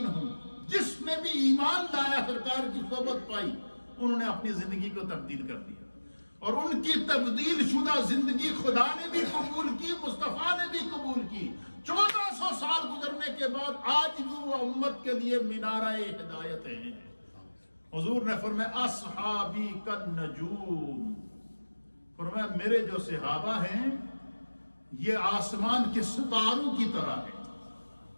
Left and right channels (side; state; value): both; inverted; correlation -1.00